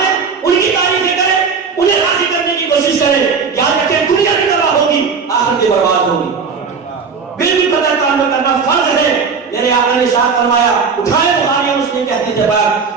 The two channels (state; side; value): quieter; left; 5.5 dB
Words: ان کی تعریفیں کریں، انہیں راضی کرنے کی کوشش کریں۔ یاد رکھیں دنیا بھی تباہ ہوگی، آخرت بھی برباد ہوگی۔ بالکل پتہ تعلق کرنا فرض ہے۔ میرے آقا نے ارشاد فرمایا، اٹھائے بخاری اور مسلم کے حدیث